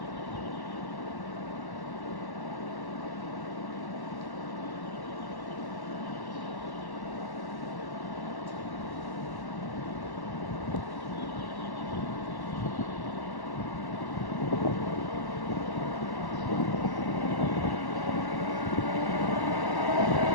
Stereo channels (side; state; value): right; late; 1.1 ms